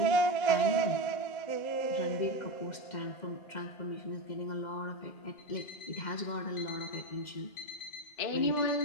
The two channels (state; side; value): late; right; 2.1 ms